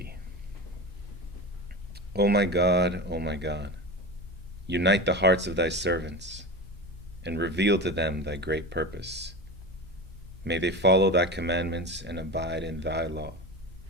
O my God, unite the hearts of thy servants and reveal to them thy great purpose. May they follow thy commandments and abide in thy law.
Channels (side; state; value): both; normal; correlation 0.27